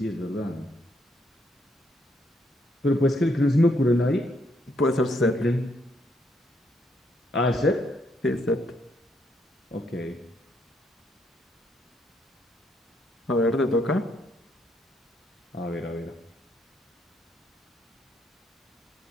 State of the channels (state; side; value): normal; both; correlation 0.74